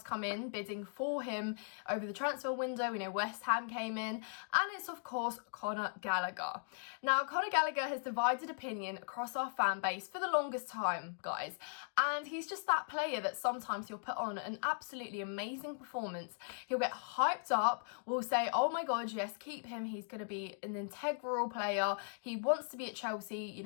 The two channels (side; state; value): right; silent; digital silence